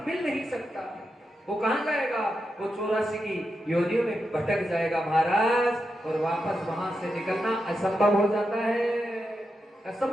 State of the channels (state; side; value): normal; both; correlation 0.87